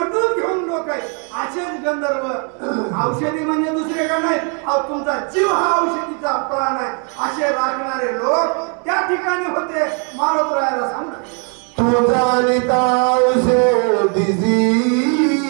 घेऊन लोक आहे. असेच गंधर्व औषधी म्हणजे दुसरे का नाही, तुमचा जीव हा औषधीचा प्राण आहे असे राखणारे लोक त्या ठिकाणी होते. मारोत्रायाला सांगतात तुझा निता औषधीची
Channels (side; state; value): left; quieter; 38.7 dB